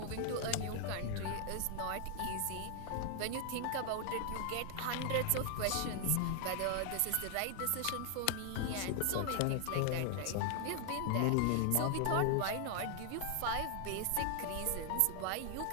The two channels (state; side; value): different; both; correlation 0.00